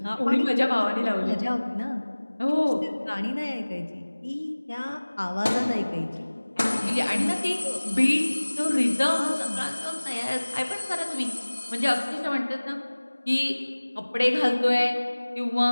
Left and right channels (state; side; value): inverted; both; correlation -1.00